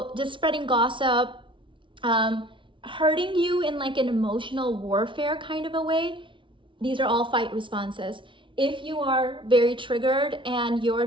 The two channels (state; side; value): late; left; 0.24 ms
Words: just spreading gossip, hurting you in like an emotional warfare kind of a way. These are all fight responses. If you are very triggered and